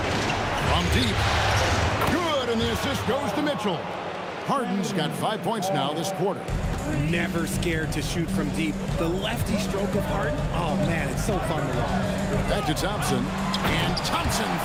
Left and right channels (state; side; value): identical; both; correlation 1.00